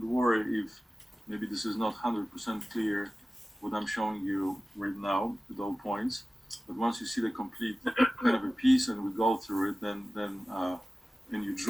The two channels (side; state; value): both; normal; correlation 0.96